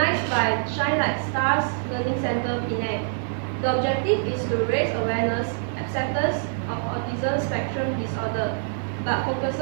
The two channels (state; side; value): silent; left; 57 dB below the other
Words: by Shine Like Stars Learning Center, Penang. The objective is to raise awareness, acceptance of autism spectrum disorder, but